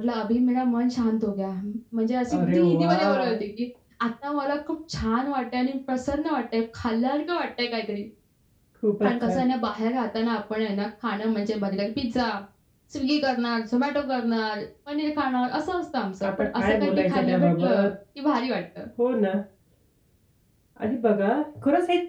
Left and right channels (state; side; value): identical; both; correlation 1.00